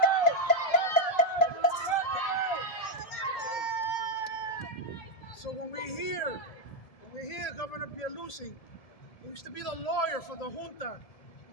So when we hear Governor Pierluisi, who used to be the lawyer for the junta,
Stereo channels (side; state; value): right; late; 1.7 ms